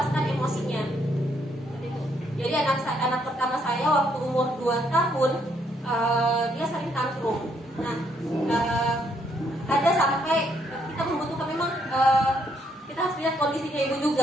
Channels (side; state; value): both; normal; correlation 0.72